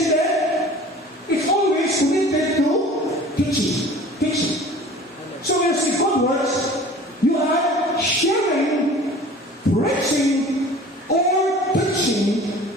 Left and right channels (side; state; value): both; normal; correlation 0.44